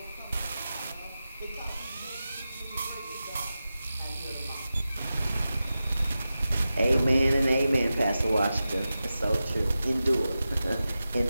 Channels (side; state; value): both; inverted; correlation -0.93